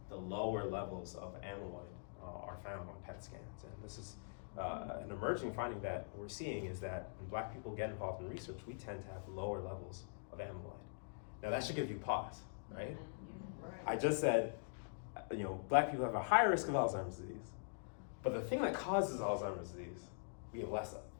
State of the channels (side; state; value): right; silent; digital silence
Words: the lower levels of amyloid are found on PET scans. And this is an emerging finding that we're seeing, is that when Black people get involved in research, we tend to have lower levels of amyloid. Now that should give you pause, right? I just said, Black people have a higher risk of Alzheimer's disease, but the thing that causes Alzheimer's disease, we have less of.